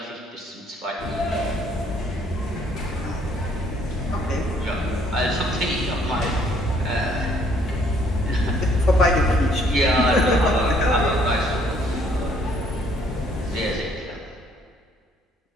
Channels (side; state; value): both; normal; correlation 0.64